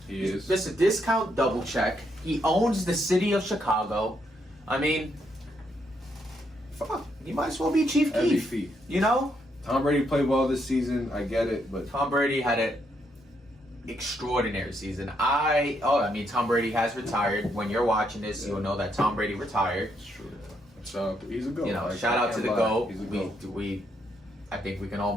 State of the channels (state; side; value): normal; both; correlation 0.76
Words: He is. Listen, discount double check. He owns the city of Chicago. I mean, fuck, he might as well be Chief Keef. MVP. Tom Brady played well this season. I get it, but Tom Brady had an extraordinary season. Tom Brady has retired. When you're watching this, you'll know that Tom Brady retired. it's true. So he's a GOAT. Shout out to the GOAT. He's a GOAT. I think we can all